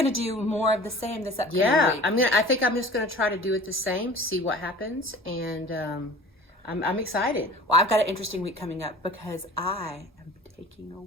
do more of the same this upcoming week. I think I'm just gonna try to do it the same, see what happens, and I'm excited. Well, I've got an interesting week coming up because I am taking a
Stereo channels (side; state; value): both; normal; correlation 0.43